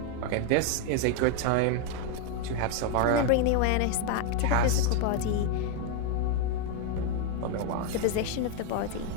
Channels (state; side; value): different; both; correlation 0.01